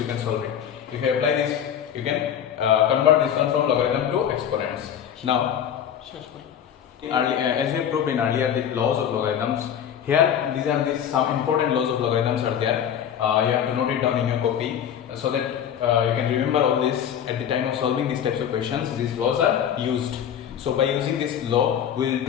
can solve it. If you apply this, you can convert this one from logarithm to exponents. Now, as we have proved in earlier the laws of logarithms, here these are some important laws of logarithms are there. You have to note it down in your copy so that you can remember all this at the time of solving these types of questions. These laws are used. So by using this law,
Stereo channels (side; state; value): right; quieter; 9.1 dB